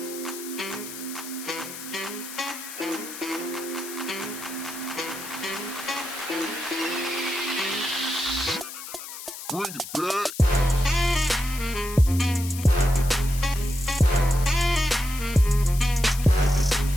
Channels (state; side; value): noise; left; hiss, 11 dB below the sound